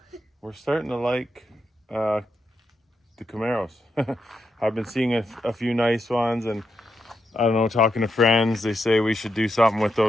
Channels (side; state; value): both; normal; correlation 0.84